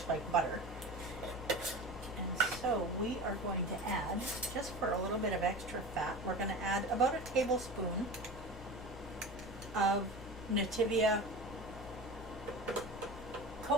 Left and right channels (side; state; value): both; normal; correlation 0.32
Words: like butter. And so we are going to add, just for a little bit of extra fat, we're going to add about a tablespoon of Nativia